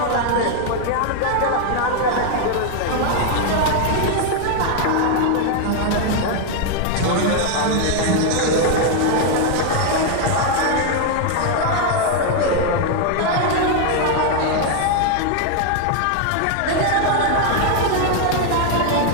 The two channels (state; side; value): different; both; correlation 0.00